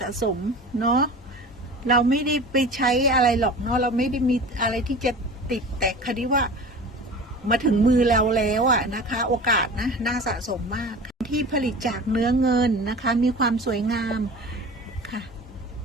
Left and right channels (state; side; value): normal; both; correlation 0.37